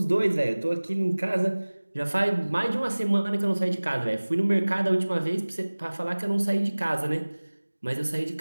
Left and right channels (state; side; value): inverted; both; correlation -1.00